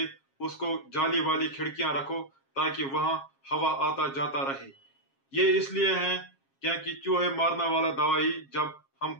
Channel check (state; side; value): late; right; 7.4 ms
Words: उसको जाली वाली खिड़कियां रखो ताकि वहां हवा आता जाता रहे। ये इसलिए है क्योंकि चूहे मारने वाला दवाई जब हम